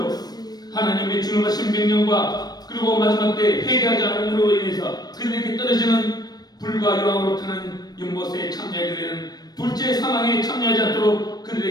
하나님의 준엄하신 명령과 그리고 마지막 때 회개하지 않음으로 인해서 그들에게 떨어지는 불과 여왕으로 타는 연못에 참여하게 되는 둘째 사망에 참여하지 않도록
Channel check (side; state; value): right; late; 0.19 ms